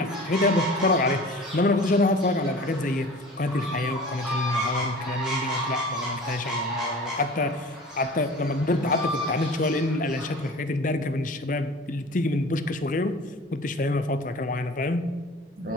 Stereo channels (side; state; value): both; normal; correlation 0.41